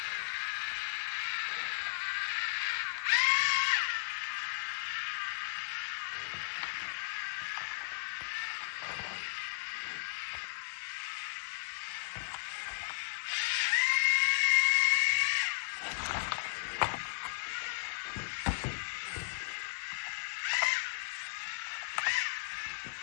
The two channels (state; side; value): silent; right; digital silence